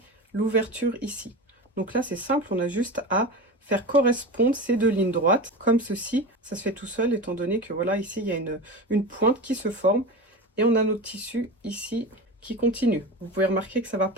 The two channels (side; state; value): both; normal; correlation 0.27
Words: l'ouverture ici. Donc là, c'est simple, on a juste à faire correspondre ces 2 lignes droites, comme ceci. Ça se fait tout seul, étant donné que voilà, ici, il y a une pointe qui se forme. Et on a notre tissu ici qui continue. Vous pouvez remarquer que ça ne va